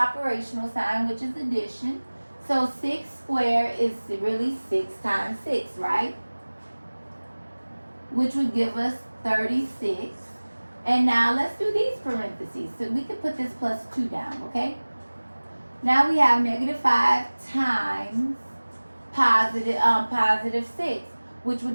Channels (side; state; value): both; inverted; correlation -1.00